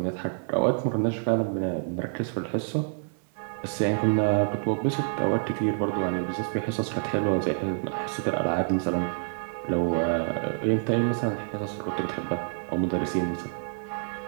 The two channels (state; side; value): silent; left; digital silence